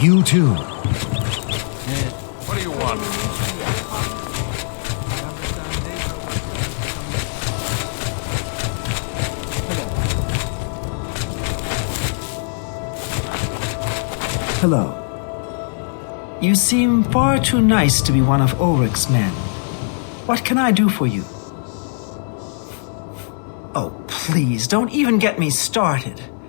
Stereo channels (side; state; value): right; silent; digital silence